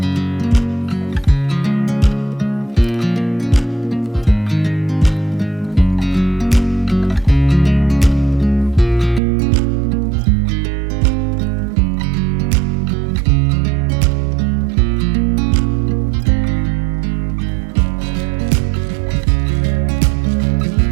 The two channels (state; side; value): drops out; left; at 9.2 s